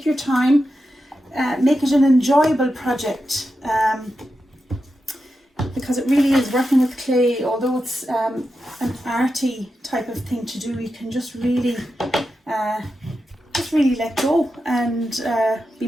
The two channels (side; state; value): both; normal; correlation 0.89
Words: your time, make it an enjoyable project, because it really is working with clay. Although it's an arty type of thing to do, you can just really let go and be